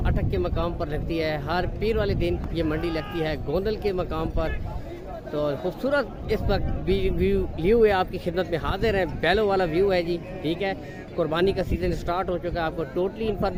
अटक के मकाम पर लगती है। हर पीर वाले दिन ये मंडी लगती है गोंदल के मकाम पर। तो खूबसूरत इस वक्त व्यू लिए हुए आपकी खिदमत में हाजिर है। बैलों वाला व्यू है जी, ठीक है। कुर्बानी का सीज़न स्टार्ट हो चुका है। आपको टोटली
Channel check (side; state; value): both; identical; correlation 1.00